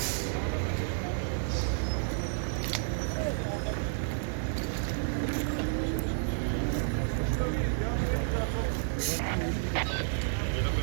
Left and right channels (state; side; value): silent; left; digital silence